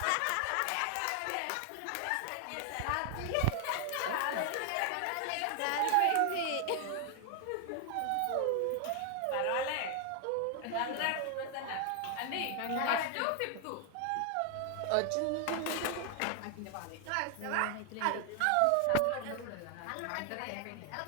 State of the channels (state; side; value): different; both; correlation 0.00